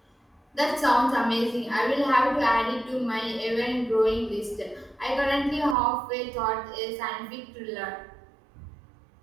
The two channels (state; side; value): drops out; left; at 5.8 s